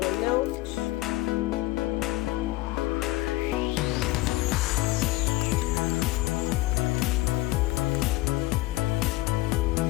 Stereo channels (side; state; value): right; quieter; 19.0 dB